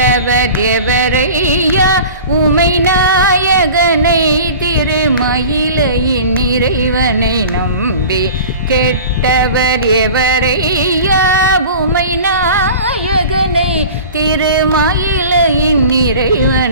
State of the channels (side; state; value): both; inverted; correlation -0.39